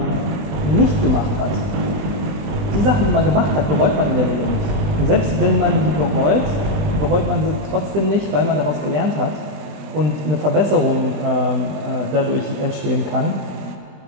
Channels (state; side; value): late; left; 20 ms